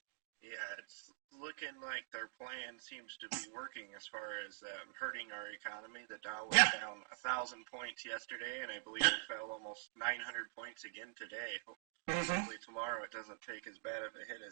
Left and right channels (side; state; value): left; silent; digital silence